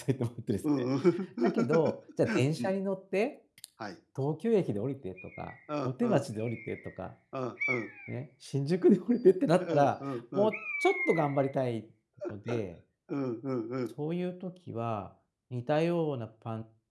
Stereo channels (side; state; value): both; identical; correlation 1.00